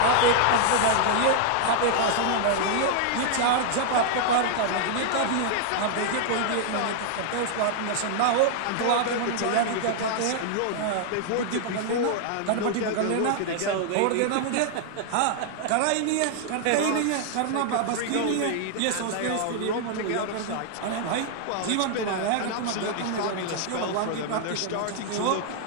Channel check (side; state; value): both; different; correlation 0.00